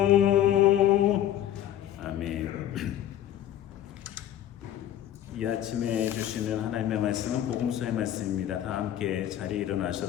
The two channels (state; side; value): quieter; right; 11.6 dB